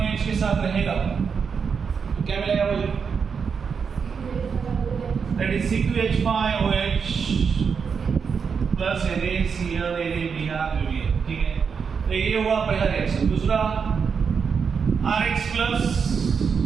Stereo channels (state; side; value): quieter; left; 6.1 dB